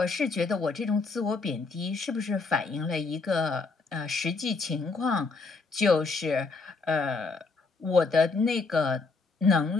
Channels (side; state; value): right; quieter; 4.1 dB